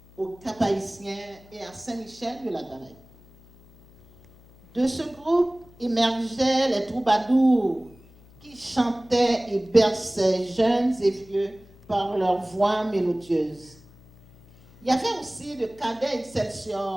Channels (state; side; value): noise; left; hum, 25 dB below the sound